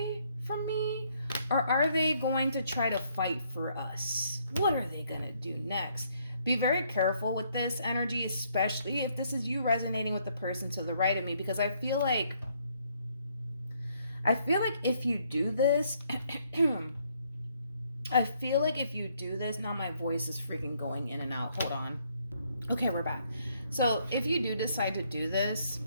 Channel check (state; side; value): inverted; both; correlation -0.69